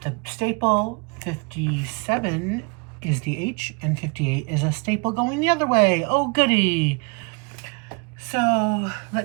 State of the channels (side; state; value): left; quieter; 32.6 dB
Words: staple. 57 is the H, and 58 is a staple going the other way. Oh, goody. So,